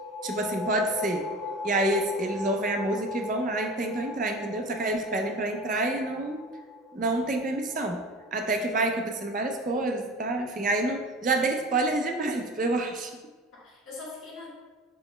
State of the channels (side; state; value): both; normal; correlation 0.36